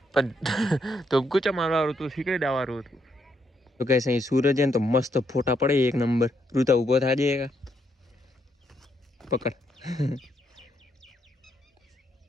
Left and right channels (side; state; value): both; normal; correlation 0.76